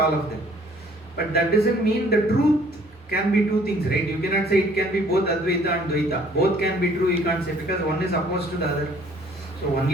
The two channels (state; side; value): normal; both; correlation 0.58